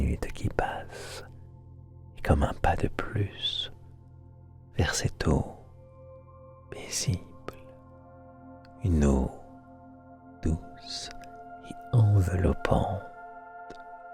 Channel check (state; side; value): identical; both; correlation 1.00